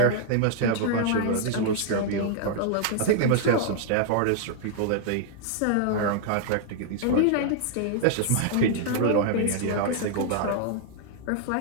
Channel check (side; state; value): both; different; correlation -0.01